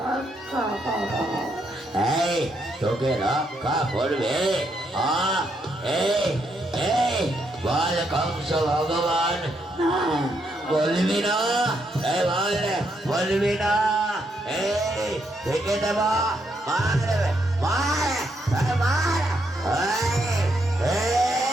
করো। এই তোকে রক্ষা করবে? এই এই বল কংস ভগবান, বলবি না? এই বল, বলবি না? এই থেকে দেব, মার মার মার।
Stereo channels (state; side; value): normal; both; correlation 0.77